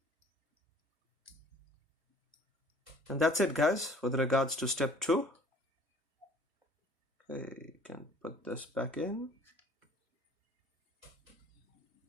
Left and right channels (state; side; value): normal; both; correlation 0.52